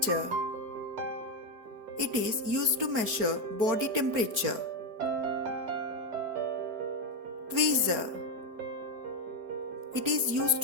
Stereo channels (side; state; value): left; late; 4.8 ms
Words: It is used to measure body temperature. Tweezer. It is used